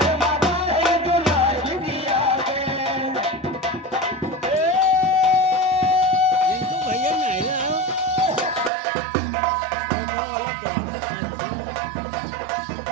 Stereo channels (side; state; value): left; drops out; at 8.7 s